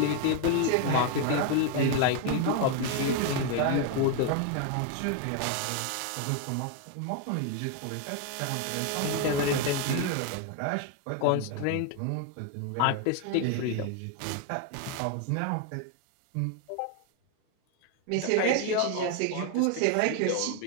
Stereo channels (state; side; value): different; both; correlation 0.01